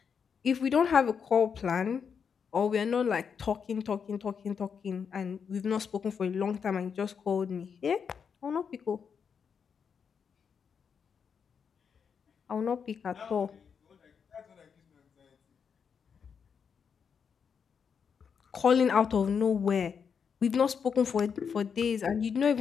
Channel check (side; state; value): right; quieter; 6.6 dB